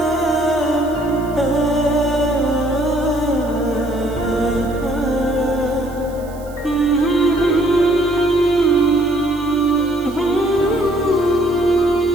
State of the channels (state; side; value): noise; right; hiss, 24 dB below the sound